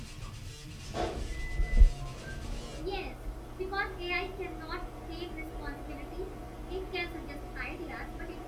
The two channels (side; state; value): both; identical; correlation 1.00